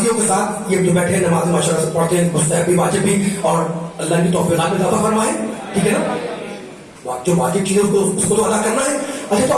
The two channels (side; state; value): both; identical; correlation 1.00